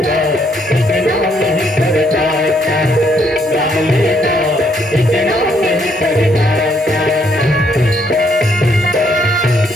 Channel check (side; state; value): both; normal; correlation 0.71